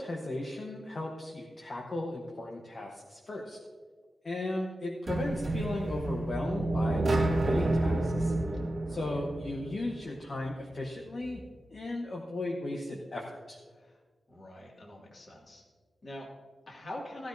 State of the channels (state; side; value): normal; both; correlation 0.91